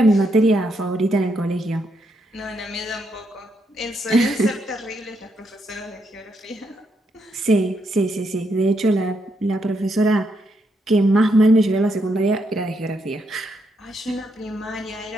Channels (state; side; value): normal; both; correlation 0.78